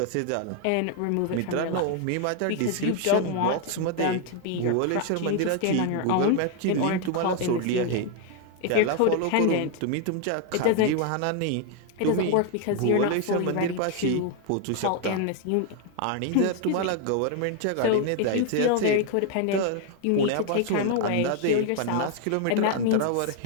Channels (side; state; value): both; different; correlation 0.00